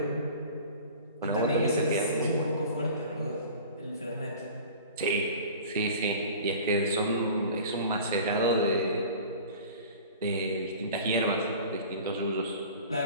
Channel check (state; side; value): inverted; both; correlation -0.41